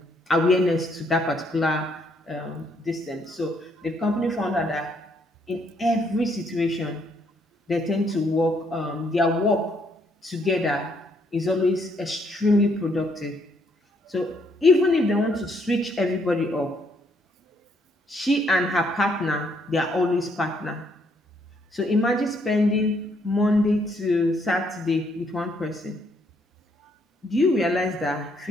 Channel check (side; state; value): both; normal; correlation 0.70